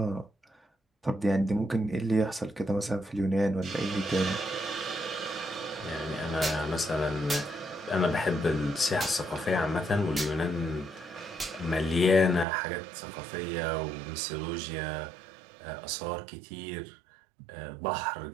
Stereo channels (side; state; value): left; drops out; at 12.5 s